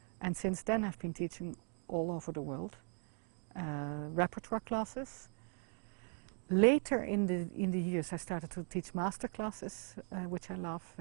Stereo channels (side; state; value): left; quieter; 39.4 dB